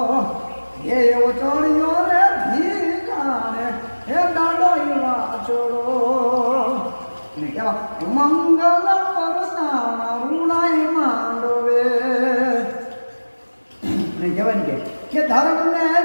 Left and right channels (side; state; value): both; inverted; correlation -1.00